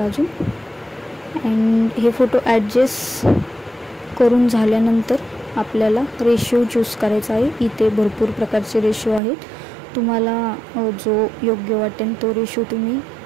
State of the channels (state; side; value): drops out; left; at 9.2 s